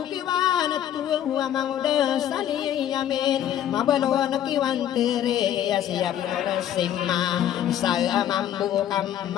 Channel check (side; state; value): right; quieter; 10.9 dB